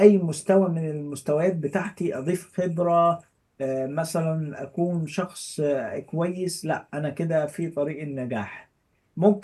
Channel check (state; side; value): identical; both; correlation 1.00